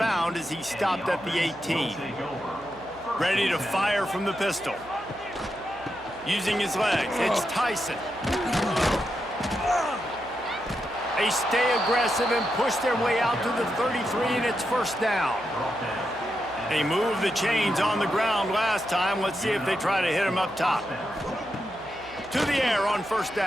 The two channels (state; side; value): noise; right; hum, 23 dB below the sound